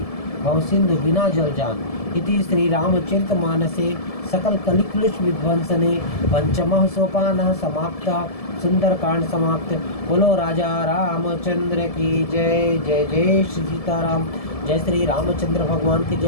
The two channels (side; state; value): right; late; 1.7 ms